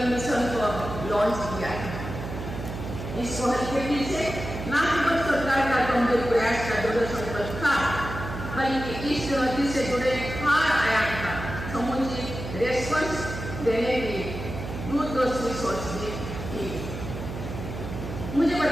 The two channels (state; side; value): noise; right; hum, 8 dB below the sound